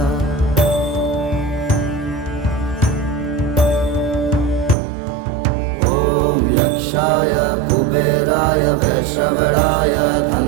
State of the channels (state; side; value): drops out; left; at 4.8 s